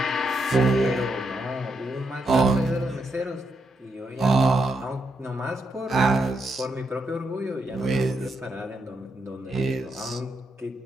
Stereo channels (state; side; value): normal; both; correlation 0.80